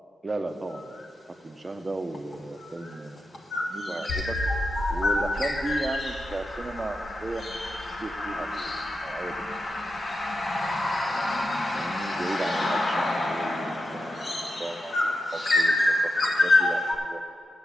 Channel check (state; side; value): normal; both; correlation 0.89